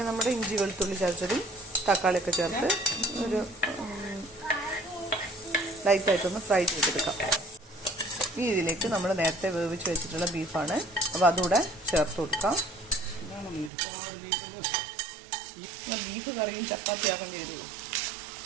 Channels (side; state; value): left; drops out; at 13.7 s